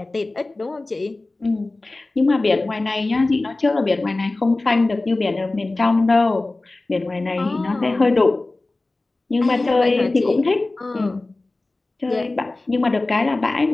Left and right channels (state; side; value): quieter; right; 3.1 dB